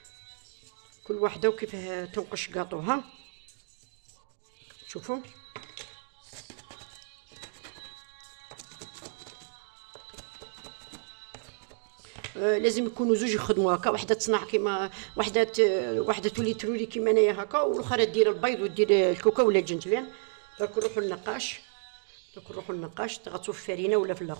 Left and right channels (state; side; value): silent; left; digital silence